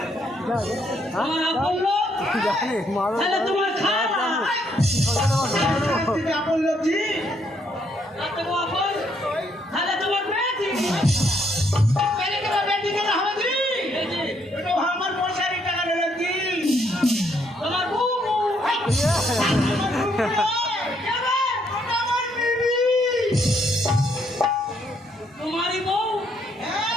আমার আপন লোক? জানি মাছ তাহলে তোমার খাওয়া তুমি আপন লোক জি? রাতে গো আপন? তাহলে তোমার বেটি? মেরে কেন বেটি কেন হবে জি? এই যে, এটা আমার পয়সার টাকা দিল জি। তোমার বউ বউ। আমার বুবু নয়, যাবে? ওটা আমার বিবি। তোমারই বউ?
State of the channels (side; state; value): both; normal; correlation 0.71